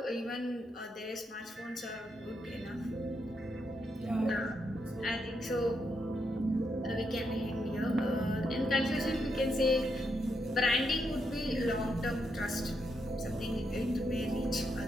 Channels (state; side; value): normal; both; correlation 0.81